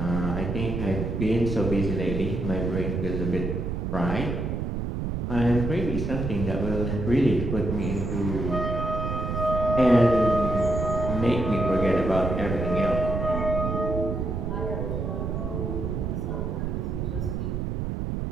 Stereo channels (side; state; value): right; noise; rumble, 2 dB below the sound